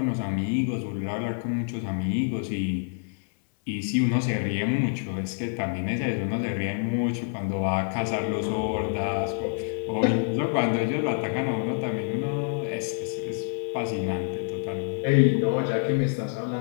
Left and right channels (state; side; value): silent; right; 60 dB below the other